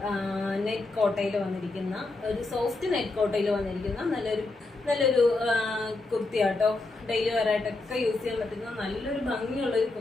നെറ്റ് കോട്ടയിൽ വന്നിരിക്കുന്ന ഒരു സോഫ്റ്റ് നെറ്റ് കോട്ടയിൽ വന്നിരിക്കുന്ന നല്ലൊരു കുർത്തിയാട്ടോ. ഡെയിലി വെയറായിട്ടൊക്കെ യൂസ് ചെയ്യാൻ പറ്റുന്ന നല്ലൊരു ഭംഗിയുള്ള ഒരു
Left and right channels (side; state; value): right; quieter; 3.2 dB